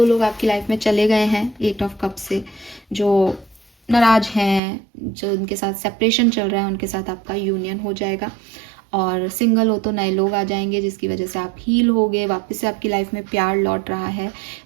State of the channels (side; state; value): left; drops out; at 4.6 s